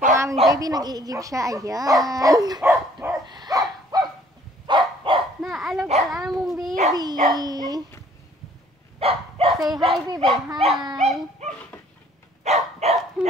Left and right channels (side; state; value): both; normal; correlation 0.58